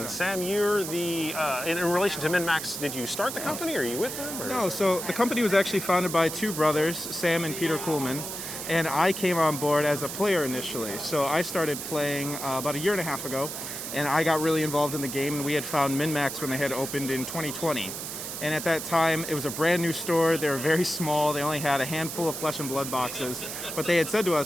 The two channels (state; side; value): noise; right; hiss, 7 dB below the sound